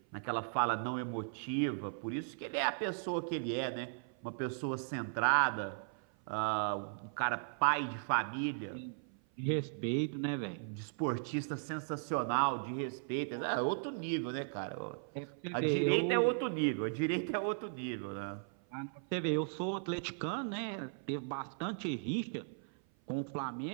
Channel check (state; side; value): silent; left; 53 dB below the other